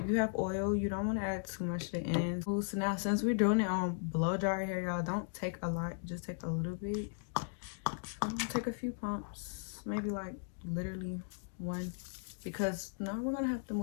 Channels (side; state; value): right; silent; digital silence